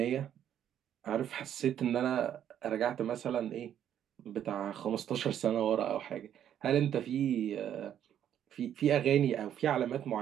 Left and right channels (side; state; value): left; quieter; 10.1 dB